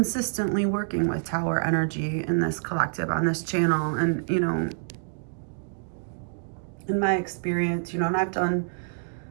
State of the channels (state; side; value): silent; left; digital silence